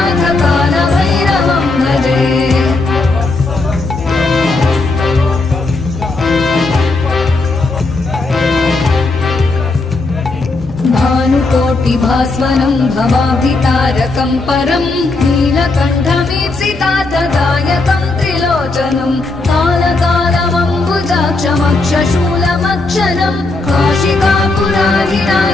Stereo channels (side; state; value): right; quieter; 3.4 dB